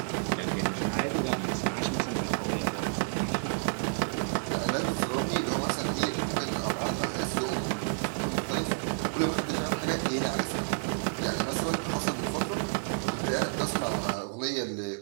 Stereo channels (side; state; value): left; silent; 58 dB below the other